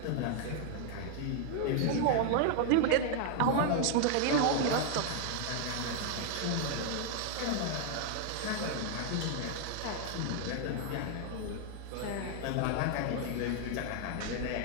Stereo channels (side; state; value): both; different; correlation 0.00